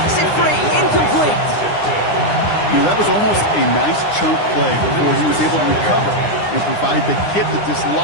it free. Incomplete. You know, that was almost a nice chunk play before he was able to recover and provide the hit that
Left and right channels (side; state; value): right; late; 9.8 ms